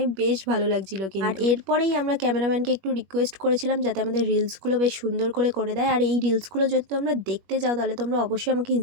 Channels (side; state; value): left; late; 21 ms